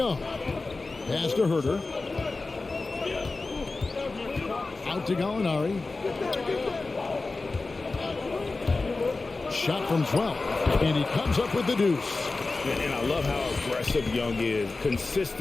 Pass to Herter. Out to Gallinari. Shot from 12. And he comes up with the deuce. And I love how aggressive Young is.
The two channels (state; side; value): quieter; right; 3.6 dB